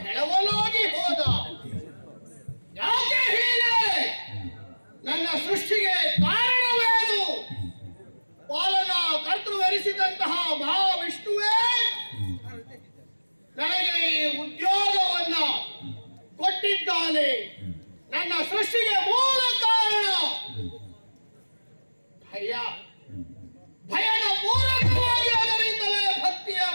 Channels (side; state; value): both; inverted; correlation -1.00